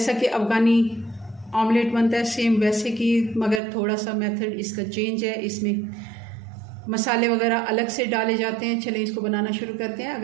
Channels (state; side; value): drops out; left; at 3.6 s